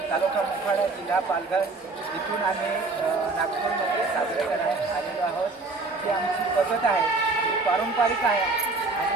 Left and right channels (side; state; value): left; quieter; 3.6 dB